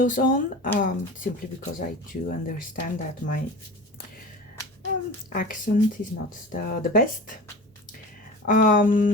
on, simply because I do understand that my accent is not the best.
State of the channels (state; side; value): normal; both; correlation 0.35